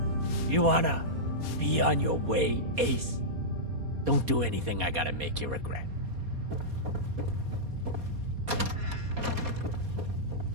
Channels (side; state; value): left; late; 4.2 ms